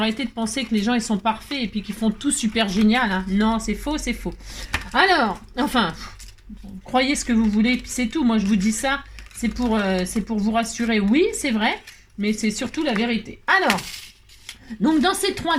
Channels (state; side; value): identical; both; correlation 1.00